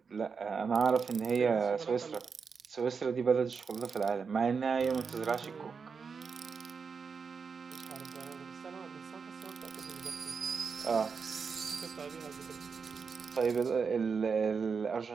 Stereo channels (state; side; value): quieter; left; 5.5 dB